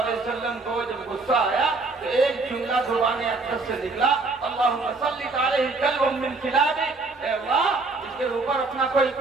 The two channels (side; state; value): left; quieter; 3.7 dB